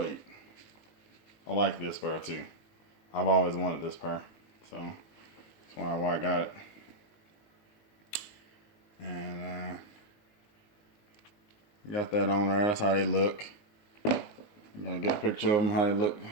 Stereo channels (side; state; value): right; late; 19 ms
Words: 8. I like this pair too. I've always wanted this pair, so that's why I got it. And got that on there. That's how they look. You gotta get a picture of them, how they look